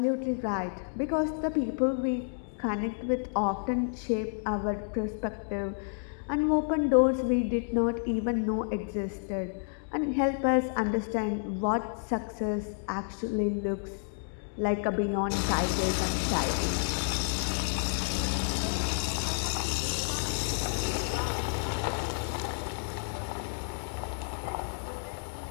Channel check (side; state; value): right; silent; digital silence